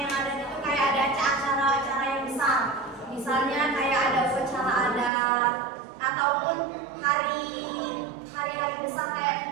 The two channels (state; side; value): drops out; left; at 5.1 s